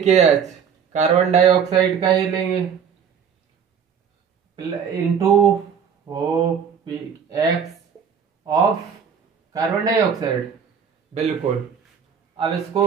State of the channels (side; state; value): left; quieter; 7.2 dB